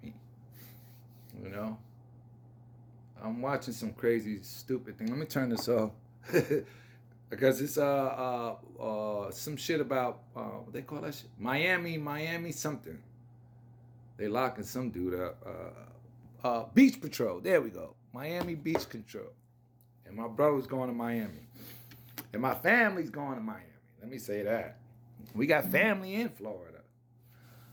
me. You know. I'm watching some crazy, stupid thing. Let me turn this off. Because it's some shit about what they call that shit? Miami something. They locking some dude up. Beach Patrol. There we go. Miami Beach Control. And my brother's going to Miami. And my family's going to Miami. Let me say that. We got family in Florida.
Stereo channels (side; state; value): both; identical; correlation 1.00